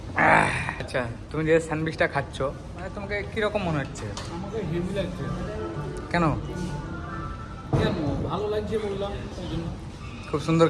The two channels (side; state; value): both; identical; correlation 1.00